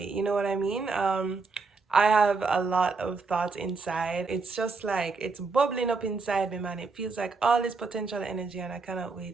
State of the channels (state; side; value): quieter; left; 4.2 dB